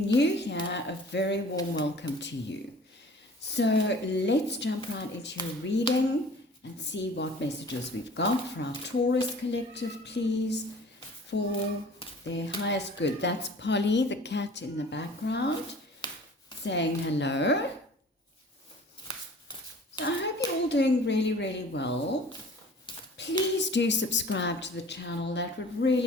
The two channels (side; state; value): both; normal; correlation 0.47